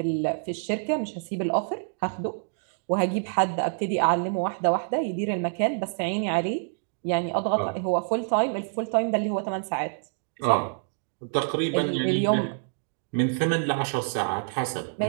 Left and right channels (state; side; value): silent; left; digital silence